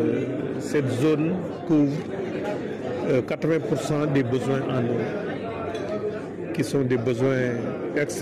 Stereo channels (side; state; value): both; identical; correlation 1.00